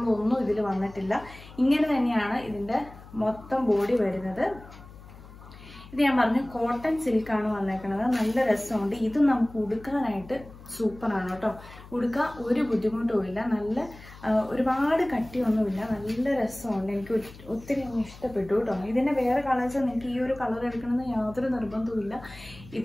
ഇതിൽ വന്നിട്ടില്ല. ഇങ്ങനെ തന്നെയാണ് ഇതിന്റെ മൊത്തം ബോഡി വരുന്നത്. ഇത് ഞാൻ പറഞ്ഞു കോട്ടൺ സിൽക്കാണ് വന്നേക്കുന്നത്. നല്ല രസമുണ്ട്. ഇത് നമുക്ക് ഉടുക്കാനായിട്ട് സൂപ്പറാണ് കേട്ടോ. ഉടുക്കാൻ ഒരു ബുദ്ധിമുട്ടുമില്ല. നല്ല ഒരുപാട് കട്ടിയൊന്നുമില്ല. നല്ല രസമുണ്ട്. എനിക്ക് ഒത്തിരി ഇഷ്ടപ്പെട്ടു കേട്ടോ. ഇതിന്റെ വേറെ കളേഴ്സ് നിങ്ങൾക്ക് ഈ ഒരു കളർ എടുക്കണമെന്ന് യാതൊരു നിർബന്ധവുമില്ല.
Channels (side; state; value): left; noise; hum, 18 dB below the sound